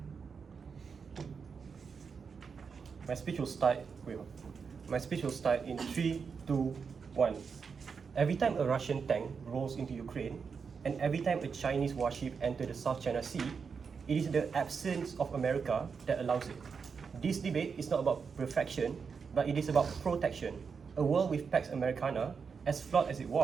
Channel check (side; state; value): left; quieter; 5.8 dB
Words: My speech will start. My speech will start in 3, 2, 1. Every time a Russian tank rolls into Ukraine, and every time a Chinese warship enters the South China Sea, it is the absence of America that allows it. This debate is not about perfection, but it is about protection. A world with Pax Americana, as flawed as it